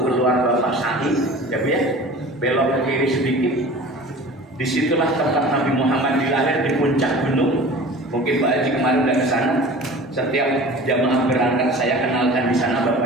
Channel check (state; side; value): normal; both; correlation 0.40